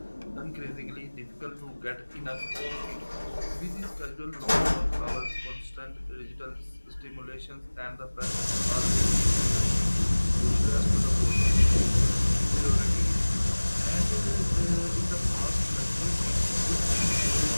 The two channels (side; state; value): both; inverted; correlation -1.00